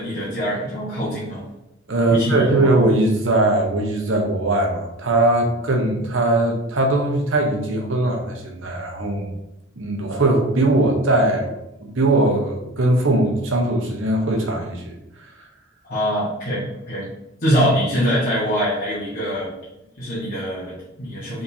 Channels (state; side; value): normal; both; correlation 0.35